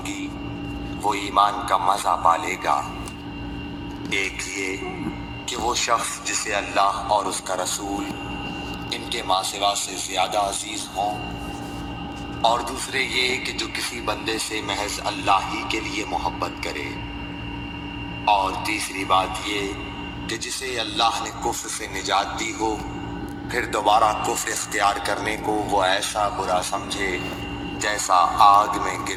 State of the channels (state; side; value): identical; both; correlation 1.00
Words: گی وہ ایمان کا مزہ پالے گا۔ ایک یہ کہ وہ شخص جسے اللہ اور اس کا رسول ان کے ماں سوا سے زیادہ عزیز ہوں، اور دوسرے یہ کہ جو کسی بندے سے محض اللہ ہی کے لیے محبت کرے، اور تیسری بات یہ کہ جسے اللہ نے کفر سے نجات دی ہو پھر دوبارہ کفر اختیار کرنے کو وہ ایسا برا سمجھے جیسا آگ میں